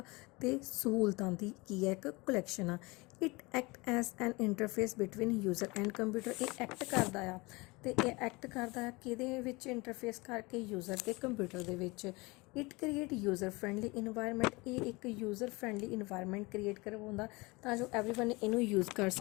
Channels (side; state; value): right; quieter; 24.5 dB